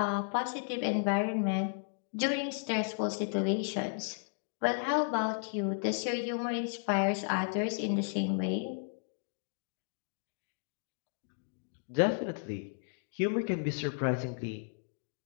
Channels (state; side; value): silent; right; digital silence